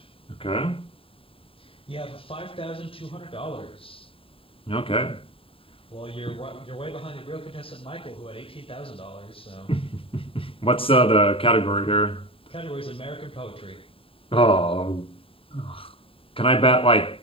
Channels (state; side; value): late; right; 0.27 ms